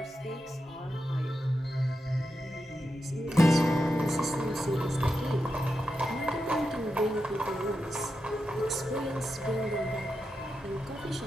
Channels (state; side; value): normal; both; correlation 0.88